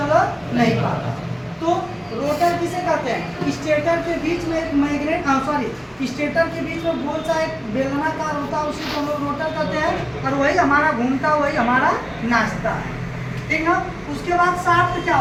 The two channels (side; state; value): both; identical; correlation 1.00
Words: नहीं पाता। तो रोटर किसे कहते हैं, स्टेटर के बीच में एक मैग्नेट, स्टेटर के बीच में गोल सा एक बेलनाकार होता है, उसी को हम लोग रोटर कहते हैं, और वही हमारा घूमता, वही हमारा नाचता है, ठीक ना। उसके बाद शाफ्ट क्या